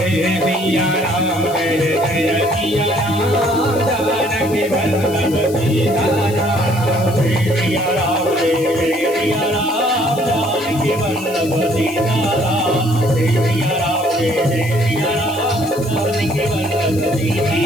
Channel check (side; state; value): left; noise; hiss, 16 dB below the sound